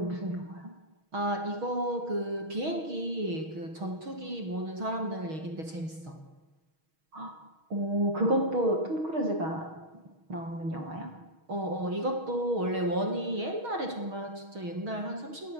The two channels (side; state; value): left; late; 6.3 ms